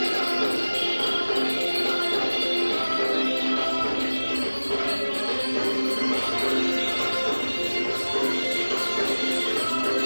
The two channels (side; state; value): both; inverted; correlation -1.00